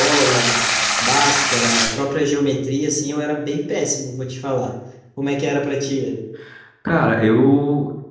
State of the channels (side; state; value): both; identical; correlation 1.00